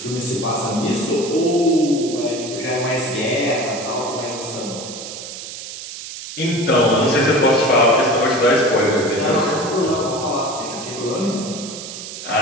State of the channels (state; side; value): noise; right; hiss, 10 dB below the sound